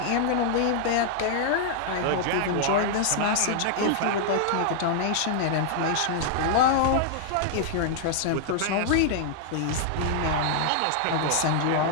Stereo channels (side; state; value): both; different; correlation -0.01